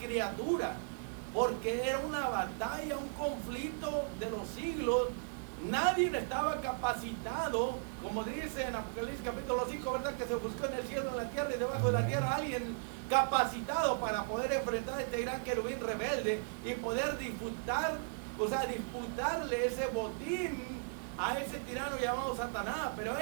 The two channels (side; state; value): left; silent; 54 dB below the other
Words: porque era una batalla, un conflicto de los siglos. Nadie estaba capacitado, como dice en Apocalipsis capítulo 5, ¿verdad? Que se buscó en el cielo, en la tierra y debajo de la tierra alguien capacitado para poder enfrentar a este gran querubín rebelde y poder disputarle ese botín a ese tirano llamado Satanás. Pero a